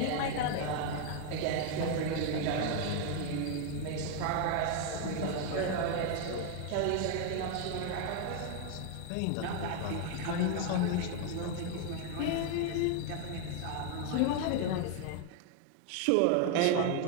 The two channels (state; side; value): different; both; correlation 0.01